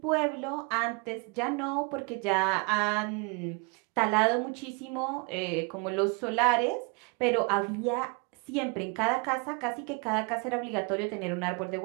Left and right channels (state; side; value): quieter; left; 32.3 dB